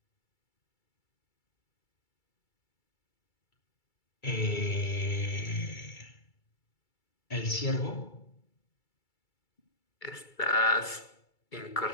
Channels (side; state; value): right; late; 2.3 ms